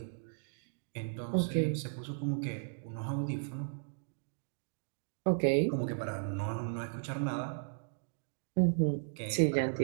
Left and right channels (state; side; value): silent; left; digital silence